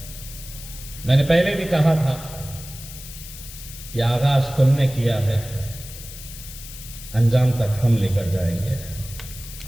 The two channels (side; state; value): left; noise; hiss, 14 dB below the sound